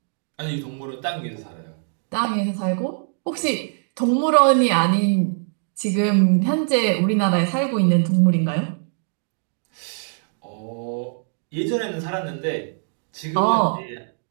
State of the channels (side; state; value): left; silent; digital silence